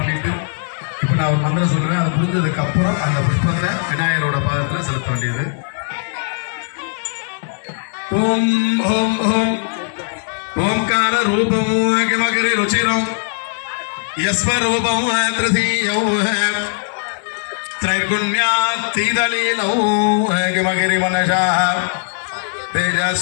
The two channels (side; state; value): right; silent; 62 dB below the other